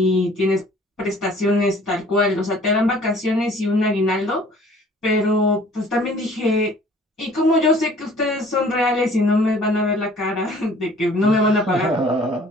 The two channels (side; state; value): both; normal; correlation 0.53